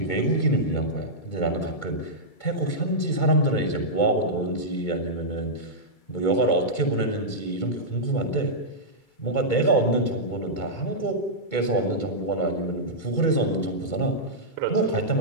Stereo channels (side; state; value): right; late; 2.2 ms